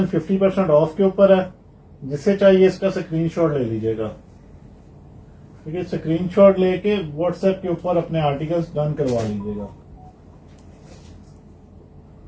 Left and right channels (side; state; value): both; identical; correlation 1.00